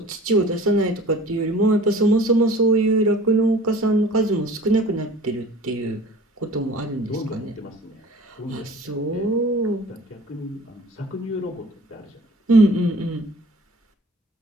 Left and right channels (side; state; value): both; normal; correlation 0.45